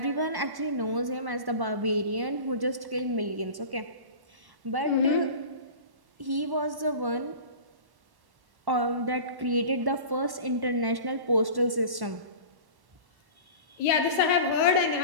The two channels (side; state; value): left; late; 1.1 ms